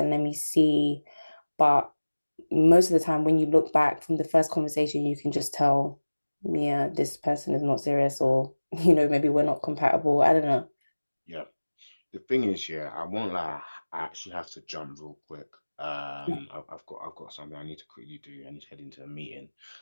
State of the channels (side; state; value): both; inverted; correlation -1.00